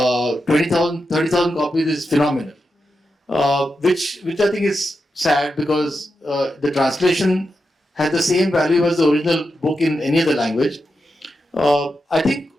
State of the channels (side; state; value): both; normal; correlation 0.88